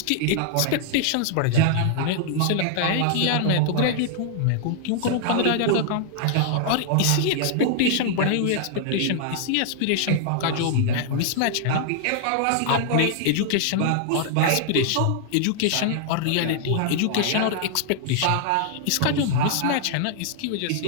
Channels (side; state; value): both; different; correlation -0.01